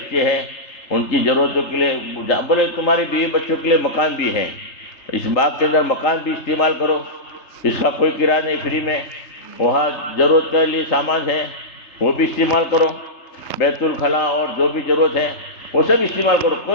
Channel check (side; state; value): right; late; 3.3 ms